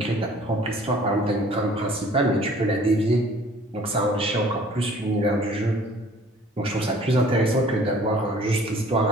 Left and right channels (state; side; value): normal; both; correlation 0.53